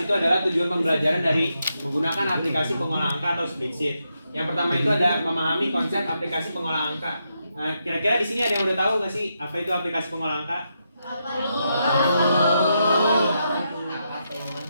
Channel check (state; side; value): inverted; both; correlation -0.83